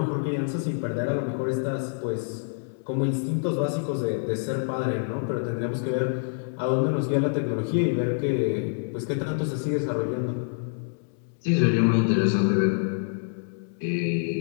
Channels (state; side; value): silent; right; digital silence